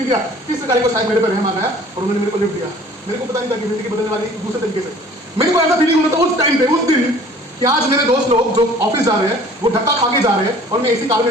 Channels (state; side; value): normal; both; correlation 0.50